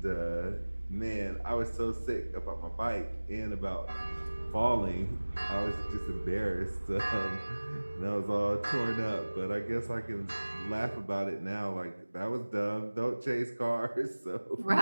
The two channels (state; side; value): inverted; both; correlation -1.00